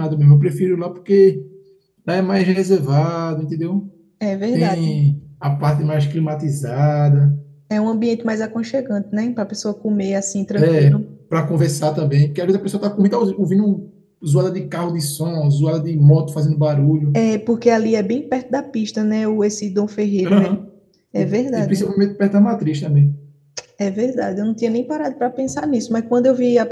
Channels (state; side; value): identical; both; correlation 1.00